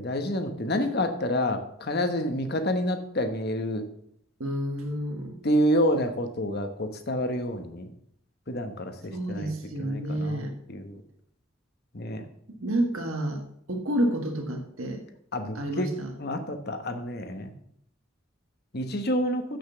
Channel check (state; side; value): normal; both; correlation 0.40